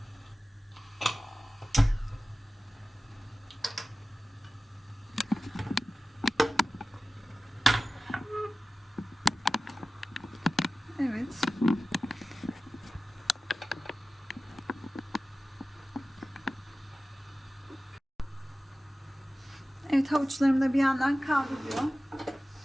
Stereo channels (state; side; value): normal; both; correlation 0.96